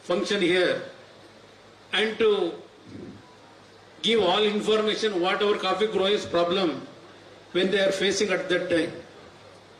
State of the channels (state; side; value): identical; both; correlation 1.00